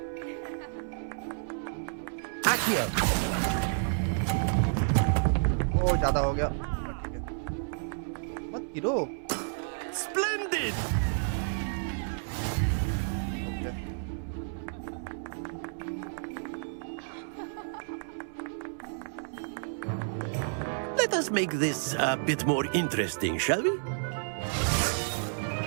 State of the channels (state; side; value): silent; left; digital silence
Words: Accio. ओ ज़्यादा हो गया ठीक है मत गिरो Splendid! Let us make this a bit more interesting, shall we?